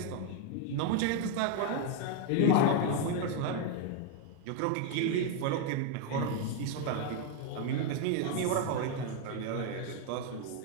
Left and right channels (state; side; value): different; both; correlation 0.01